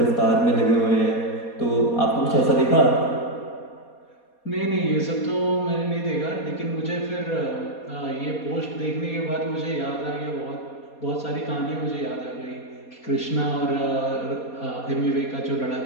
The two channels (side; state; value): right; late; 4.2 ms